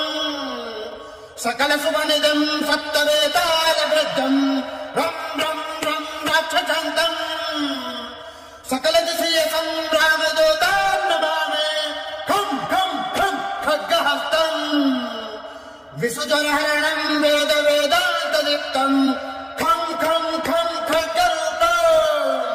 సకల సువనిదం సప్తవేతాల వృద్ధం రం రం రం రాక్షసాంతం సకల దిశీయ సంగ్రామదూతాం నమామి ఖం ఖం ఖం ఖడ్గహస్తం విసుజనహరణం వేద వేదాంతదీప్తం ఖం ఖం ఖం ఖడ్గరూపం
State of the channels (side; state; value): both; identical; correlation 1.00